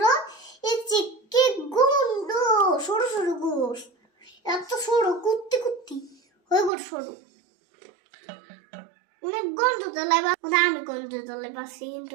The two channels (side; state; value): left; drops out; at 6.7 s